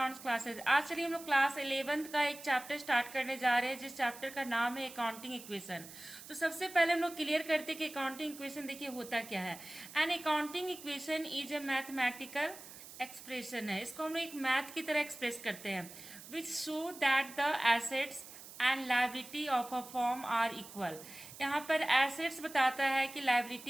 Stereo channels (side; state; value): right; noise; hiss, 15 dB below the sound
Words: classes. आज चलिए हम लोग क्लास 11th का एक चैप्टर स्टार्ट करने जा रहे हैं, जिस चैप्टर का नाम है अकाउंटिंग इक्वेशन। तो सबसे पहले हम लोग क्लियर करते हैं कि अकाउंटिंग इक्वेशन देखिए होता क्या है। An accounting equation is a mathematical expression है। इसको हम लोग एक मैथ की तरह एक्सप्रेस करते हैं, which show that the assets and liability of a form are equal. यहाँ पर एसेट्स बताता है कि